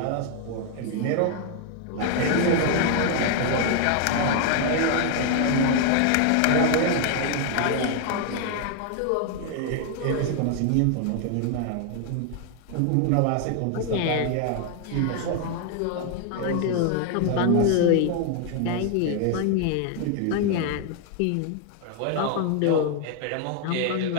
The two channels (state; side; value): different; both; correlation 0.00